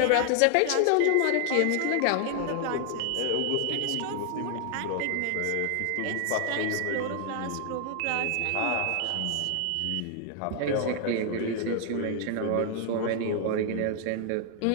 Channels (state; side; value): different; both; correlation 0.00